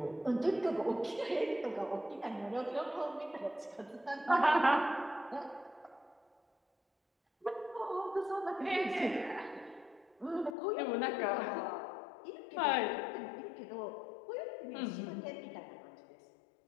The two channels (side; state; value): right; drops out; at 10.6 s